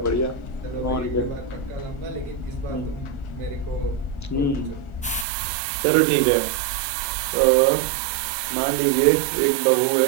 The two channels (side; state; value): left; drops out; at 5.2 s